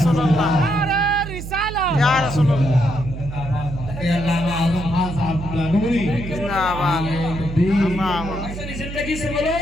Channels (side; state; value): right; noise; hum, 9 dB below the sound